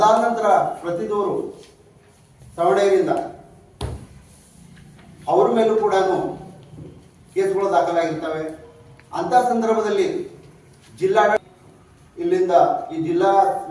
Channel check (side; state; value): both; identical; correlation 1.00